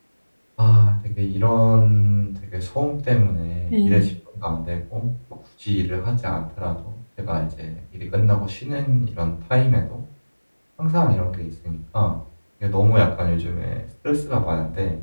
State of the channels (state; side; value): inverted; both; correlation -1.00